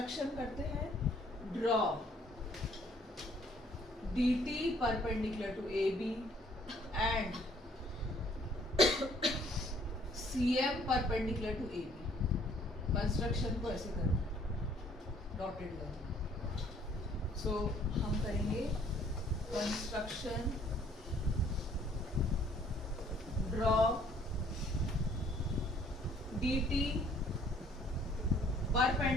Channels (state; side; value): normal; both; correlation 0.61